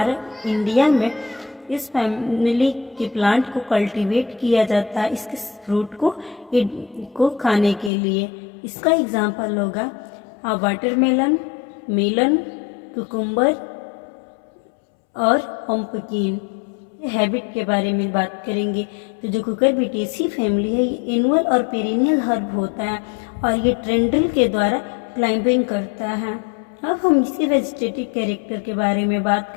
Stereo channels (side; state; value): right; drops out; at 7.9 s